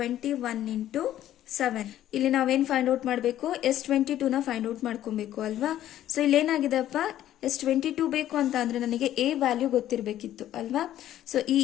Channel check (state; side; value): quieter; right; 12.4 dB